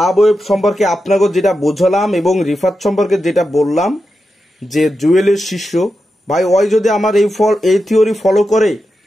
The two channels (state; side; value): normal; both; correlation 0.89